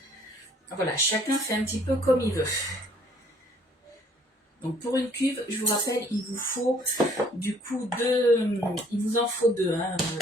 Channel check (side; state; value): both; normal; correlation 0.60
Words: voilà, chacun fait un petit peu comme il veut. Donc pour une cuve, je vous rappelle, il vous faut du coup il vous en faut deux, hein,